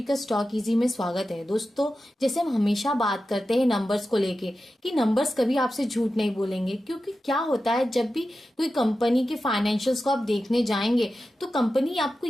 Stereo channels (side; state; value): both; normal; correlation 0.92